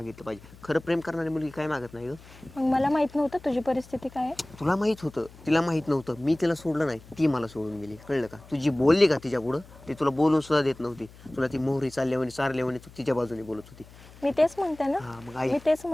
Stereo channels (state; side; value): noise; left; hum, 21 dB below the sound